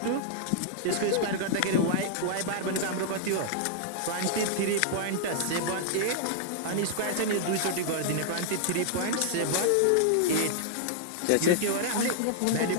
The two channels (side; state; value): both; different; correlation -0.01